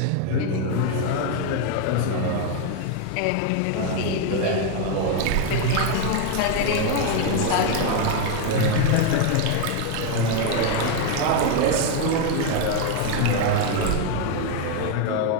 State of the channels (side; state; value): both; different; correlation 0.01